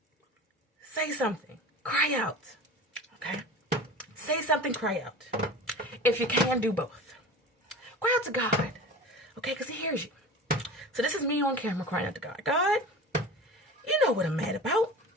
Say something. Cry out. Okay? Say something, cry out. If you can, do both. Cry out to God. Okay? Because he hears you. So this is me on camera crying out to God. God, you know what I'm mad about.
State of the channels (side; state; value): both; normal; correlation 0.35